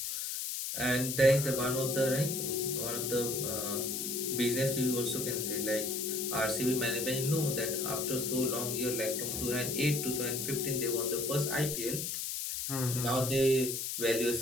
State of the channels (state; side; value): noise; left; hiss, 3 dB below the sound